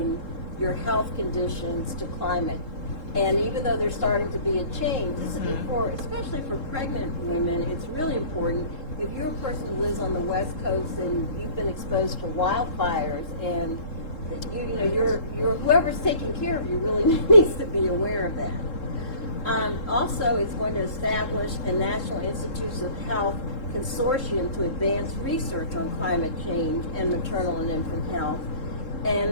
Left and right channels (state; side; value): late; right; 3.7 ms